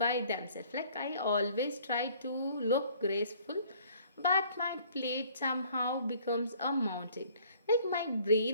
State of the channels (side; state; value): both; inverted; correlation -0.57